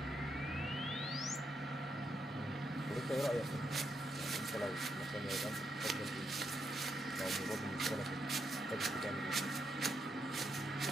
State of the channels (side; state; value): both; normal; correlation 0.81